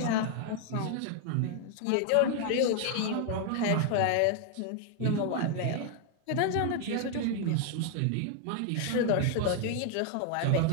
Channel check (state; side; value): different; both; correlation 0.00